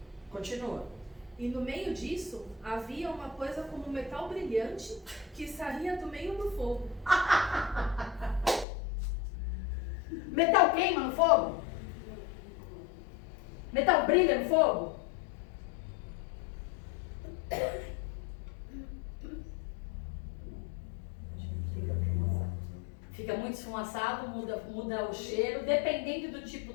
Continua. E no meio disso, havia uma coisa como um metal brilhante que saía do meio do fogo. Metal queima no fogo? Metal brilha no fogo? Fica muito esfumaçado, muda o cheiro. Dependendo do tipo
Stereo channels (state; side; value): drops out; right; at 8.7 s